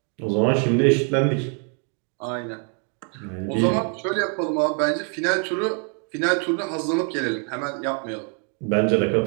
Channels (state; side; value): quieter; left; 40.0 dB